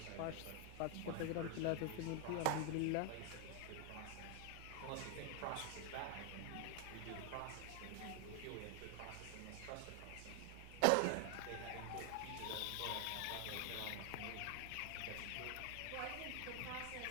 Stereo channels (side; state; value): both; different; correlation 0.00